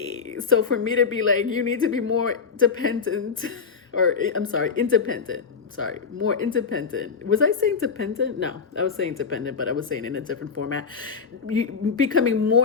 So for me to be like, you need to be more dependent, or independent. More independent. Was I saying dependent? No, I was saying dependent, but I was saying in a different format. You becoming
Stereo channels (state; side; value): quieter; right; 5.6 dB